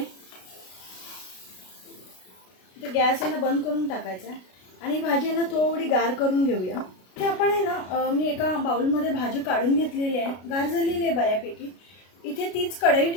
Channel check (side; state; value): right; late; 33 ms